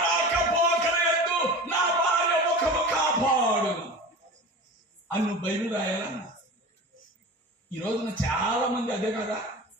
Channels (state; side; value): normal; both; correlation 0.33